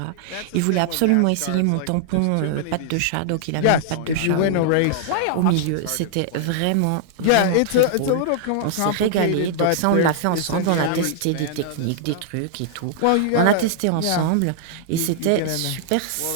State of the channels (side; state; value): both; different; correlation -0.01